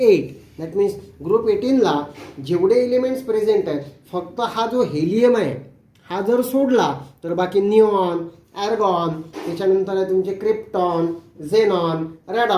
दॅट मीन्स ग्रुप 18ला जेवढे एलिमेंट्स प्रेझेंट आहेत फक्त हा जो हेलियम आहे हा जर सोडला तर बाकी निऑन, ॲर्गॉन, त्याच्यानंतर आहे तुमचे क्रिप्टॉन, झेनॉन,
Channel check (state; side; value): identical; both; correlation 1.00